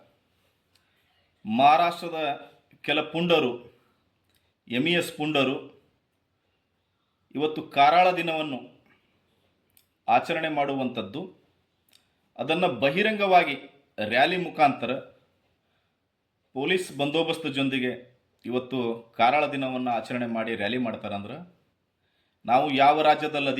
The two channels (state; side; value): identical; both; correlation 1.00